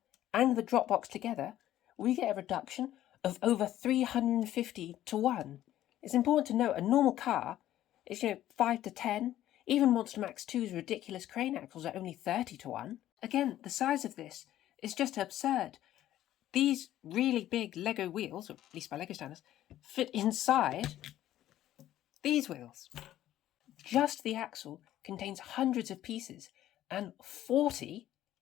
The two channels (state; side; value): quieter; right; 13.1 dB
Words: and the drop box together, we get a reduction of over 350 to 1. It's important to note a normal car is 5 to 10. Even Monstermax 2's ridiculous crane axles are only 30 to 1. Again, the size of this is just absurd. These really big Lego wheels, or at least by Lego standards, fit inside these wheels. Just the axle contains hundreds of pieces and 40